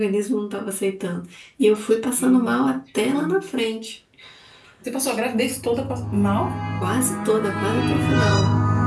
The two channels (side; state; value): both; identical; correlation 1.00